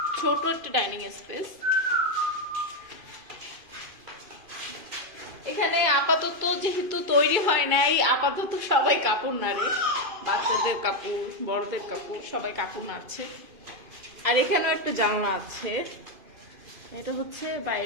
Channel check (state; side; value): late; left; 2.5 ms